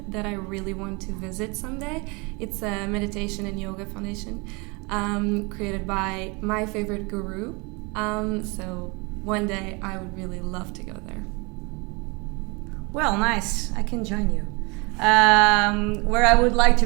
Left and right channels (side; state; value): left; quieter; 28.9 dB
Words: that I really want to visit someday. It's a meditation and yoga foundation created by my favorite guru. So one day I would really love to go there. Well, nice. I can join you. Where I would like to